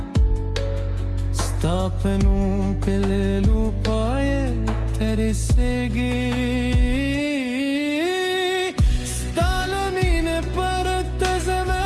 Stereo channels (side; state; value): both; identical; correlation 1.00